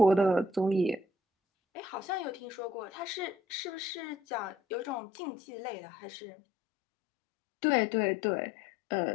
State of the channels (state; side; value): drops out; right; at 5.0 s